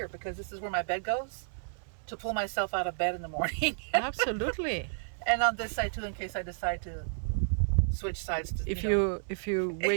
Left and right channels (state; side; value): silent; left; digital silence